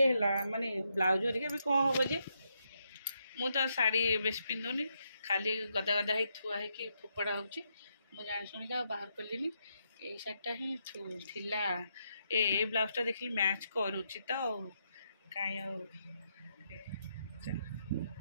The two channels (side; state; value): both; inverted; correlation -0.80